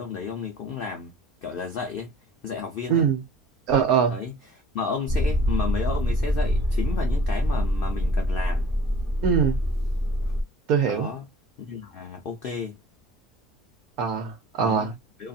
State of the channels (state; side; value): normal; both; correlation 0.48